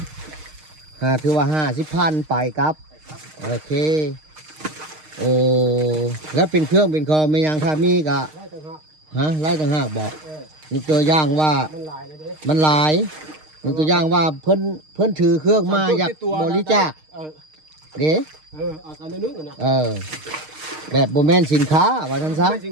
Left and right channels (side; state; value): left; late; 6.5 ms